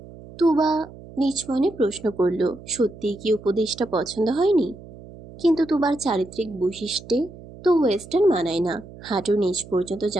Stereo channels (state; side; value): noise; right; hum, 18 dB below the sound